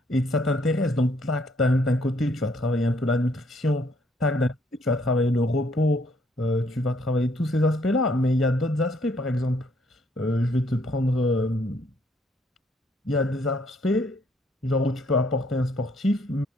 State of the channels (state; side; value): normal; both; correlation 0.67